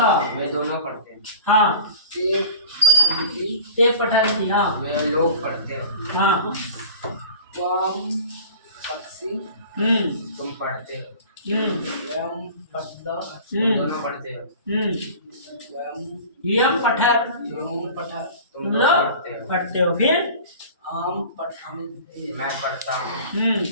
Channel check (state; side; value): inverted; both; correlation -0.40